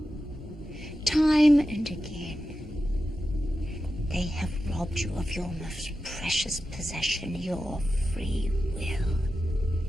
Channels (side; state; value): both; normal; correlation 0.91